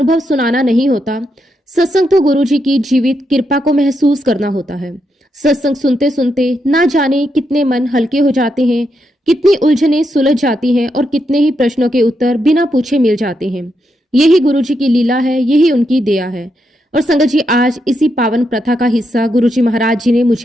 सुनाना नहीं होता, सत्संग तो गुरुजी की जीवित कृपा को महसूस करना होता है। सत्संग सुनते सुनते ना जाने कितने मन हल्के हो जाते हैं, कितनी उलझनें सुलझ जाती हैं और कितने ही प्रश्नों के उत्तर बिना पूछे मिल जाते हैं। यही गुरुजी की लीला है, यही उनकी दया है। और संगत जी, आज इसी पावन प्रथा का हिस्सा गुरुजी महाराज जी ने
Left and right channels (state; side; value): normal; both; correlation 0.82